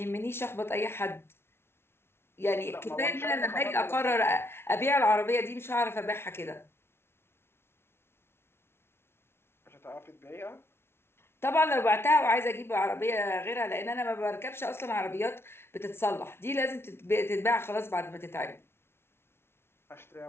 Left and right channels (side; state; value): right; late; 0.12 ms